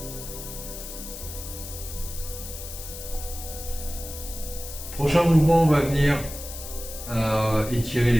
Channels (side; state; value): left; noise; hiss, 11 dB below the sound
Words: Prochain mouvement, on va venir étirer